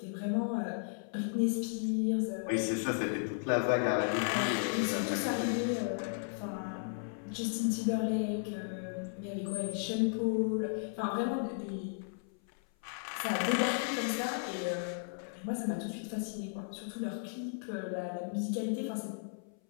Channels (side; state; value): right; silent; 54 dB below the other